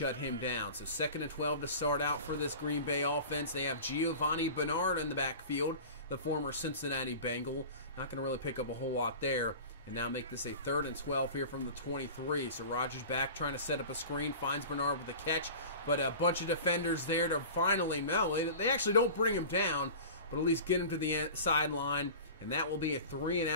him down. So 2nd and 12 to start out for this Green Bay offense. They have Giovanni Bernard in the backfield, the former Cincinnati Bengal. Not going to really pick up a whole lot there. And now make this a 3rd and 12 here from the 23. So Rodgers back trying to set up a screen, finds Bernard with a catch, but a bunch of defenders there to finally, no, they actually don't bring him down, but at least get him to the sideline. And that will be a 3 and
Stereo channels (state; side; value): inverted; both; correlation -0.36